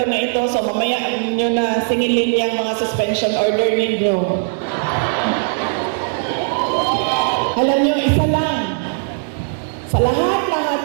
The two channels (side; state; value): left; silent; digital silence